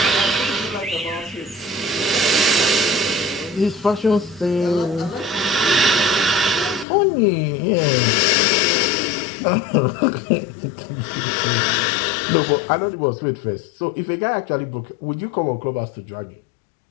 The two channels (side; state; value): right; drops out; at 6.9 s